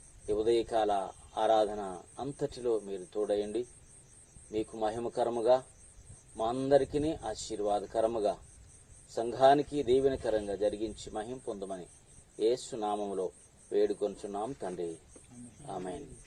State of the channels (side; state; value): both; identical; correlation 1.00